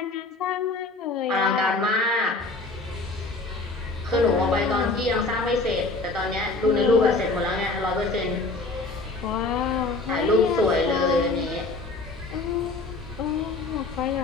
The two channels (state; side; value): quieter; right; 3.3 dB